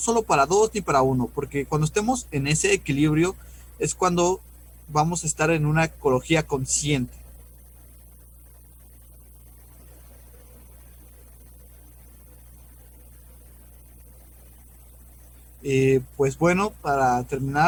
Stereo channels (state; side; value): identical; both; correlation 1.00